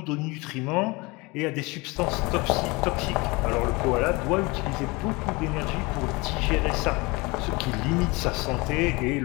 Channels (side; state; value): right; quieter; 25.3 dB